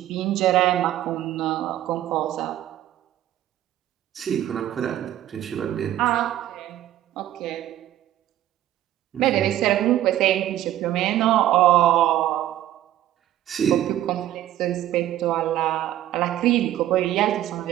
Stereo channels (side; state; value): left; quieter; 12.9 dB